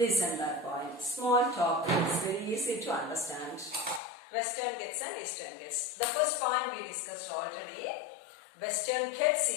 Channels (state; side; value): drops out; right; at 4.0 s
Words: that point. Small topic. It's very easy to understand. Western Ghats and Eastern Ghats. The first point we discussed already. Western Ghats